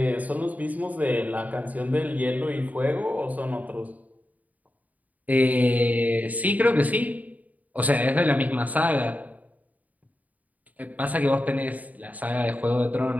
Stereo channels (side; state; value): left; late; 0.075 ms